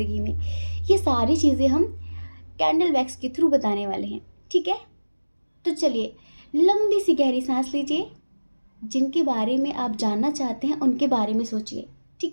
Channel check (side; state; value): both; inverted; correlation -1.00